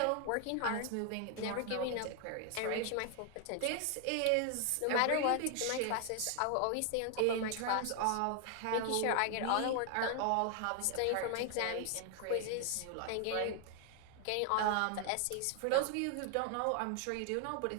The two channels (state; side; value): different; both; correlation 0.00